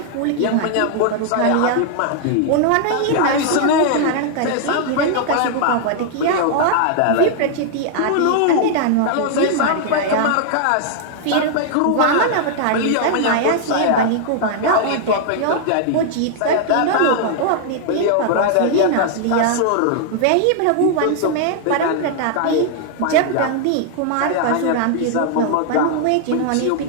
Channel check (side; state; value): both; different; correlation -0.01